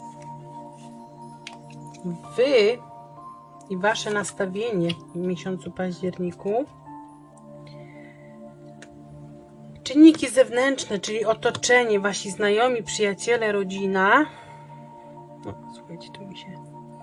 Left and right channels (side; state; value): both; identical; correlation 1.00